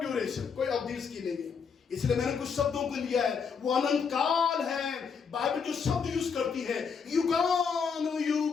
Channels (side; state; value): right; quieter; 6.0 dB